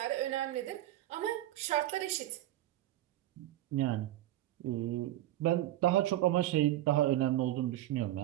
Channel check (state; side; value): quieter; left; 14.5 dB